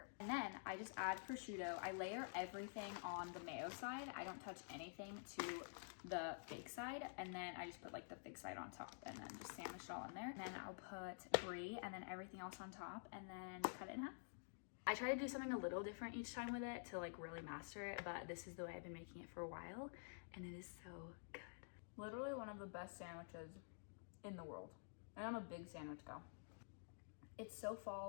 And then I just add prosciutto. I layer everything on the mayo side. I don't touch anything to the fig side, and then I just put like the fig side on top and then just sandwich it all in there. And then I'll put brie and then everything else on top and then cut it in half. I try to do something a little different each time with it to like really master it, but this is the way I've been making it for a while and it is so good. Literally one of the best sandwiches in the world. And I'm a big sandwich gal. It's so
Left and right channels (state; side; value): silent; right; digital silence